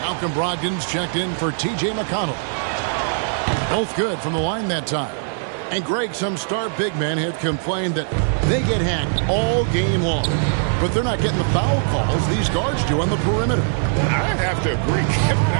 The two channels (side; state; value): left; silent; digital silence